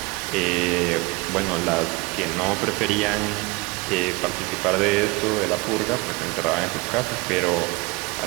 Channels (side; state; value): left; quieter; 25.3 dB